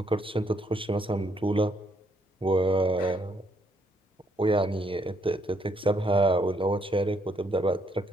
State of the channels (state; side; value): normal; both; correlation 0.72